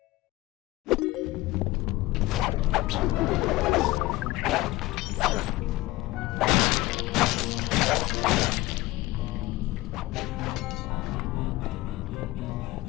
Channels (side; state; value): right; quieter; 19.2 dB